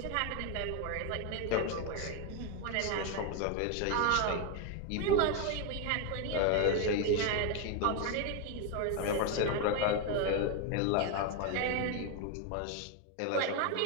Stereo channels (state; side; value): different; both; correlation 0.01